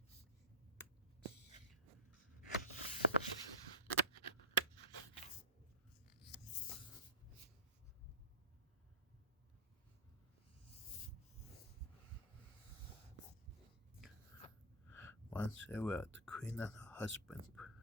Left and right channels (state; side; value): normal; both; correlation -0.11